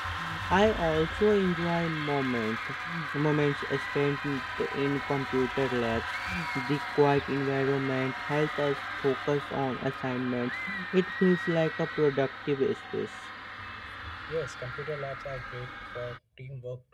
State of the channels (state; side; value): identical; both; correlation 1.00